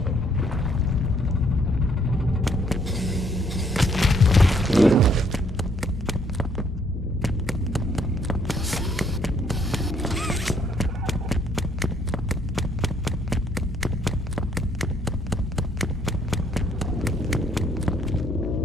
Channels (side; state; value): both; normal; correlation 0.67